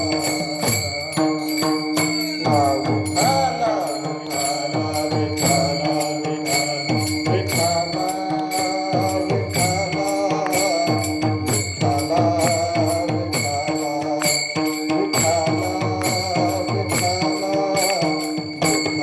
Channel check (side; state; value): both; identical; correlation 1.00